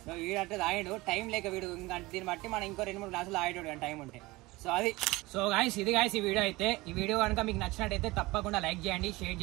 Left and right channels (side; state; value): left; quieter; 21.1 dB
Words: సో వీడంటే తాగిండు, టైం లేక వీడు ఇంకా దీన్ని బట్టి మనం ఇంకో 2-3 గ్లాసులు తాగేటోడు కానీ టైం ఉంటే. సో అది. సో గాయస్ ఇది గాయస్ ఈ వీడియో అయితే. ఈ వీడియో కనుక మీకు నచ్చినట్టయితే తప్పకుండా లైక్ చేయండి, షేర్